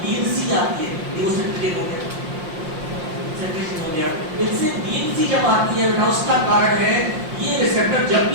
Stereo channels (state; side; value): late; left; 5.7 ms